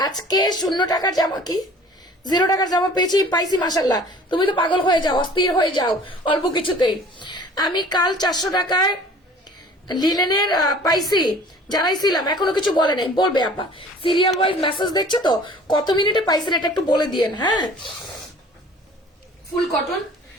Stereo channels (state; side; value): normal; both; correlation 0.48